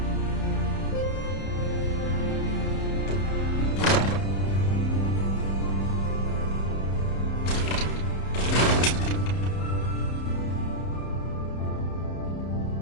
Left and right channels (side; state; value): right; late; 31 ms